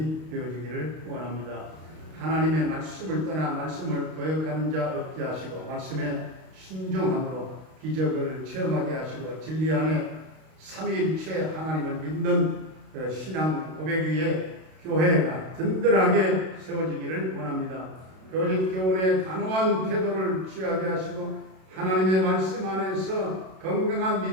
되어지기를 원합니다. 하나님의 말씀을 떠나 말씀을 거역하는 자 없게 하시고 말씀에 순종함으로 기적을 체험하게 하시고 진리 안에 삼위일체 하나님을 믿는 신앙 고백 위에 교회가 든든하게 세워지기를 원합니다. 거짓 교훈에 단호한 태도를 취하게 하시고 하나님의 말씀 안에서 건강한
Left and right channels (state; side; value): late; left; 32 ms